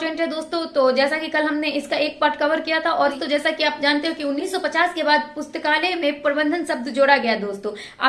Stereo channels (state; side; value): identical; both; correlation 1.00